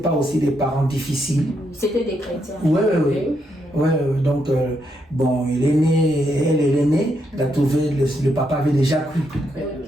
aussi des parents difficiles. C'était des chrétiens. Oui, donc bon, il est né, elle est née, il a trouvé, le papa avait déjà cru.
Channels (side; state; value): both; normal; correlation 0.79